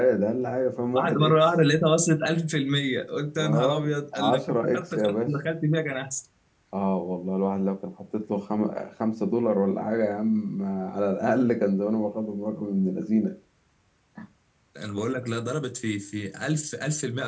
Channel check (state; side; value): identical; both; correlation 1.00